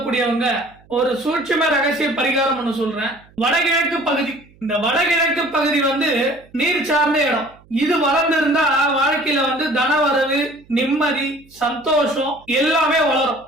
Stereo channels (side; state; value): right; noise; hum, 28 dB below the sound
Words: ஒரு சூட்சும ரகசிய பரிகாரம் ஒண்ணு சொல்றேன். வடகிழக்கு பகுதி, இந்த வடகிழக்கு பகுதி நீர் சார்ந்த இடம். இது வளர்ந்திருந்தா வாழ்க்கையில தனவரவு, நிம்மதி, சந்தோஷம் எல்லாமே வளரும்.